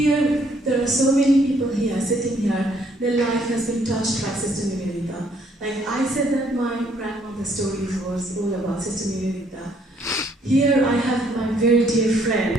there are so many people here, sitting here, their life has been touched by Sister Nivedita. Like I said that my grandmother's story was all about Sister Nivedita. Here I have my very dear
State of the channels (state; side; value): normal; both; correlation 0.66